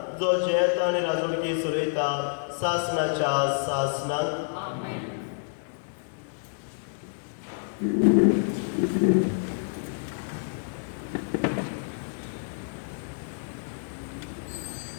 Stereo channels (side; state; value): right; silent; digital silence